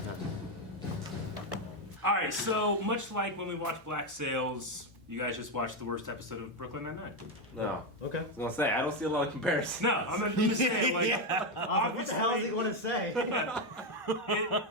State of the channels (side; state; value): both; normal; correlation 0.08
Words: All right, so much like when we watched Black Sails, you guys just watched the worst episode of Brooklyn Nine-Nine. No. Okay. I was gonna say, I don't see a lot of comparisons. No, I'm not just saying, like, What the hell is he going to say?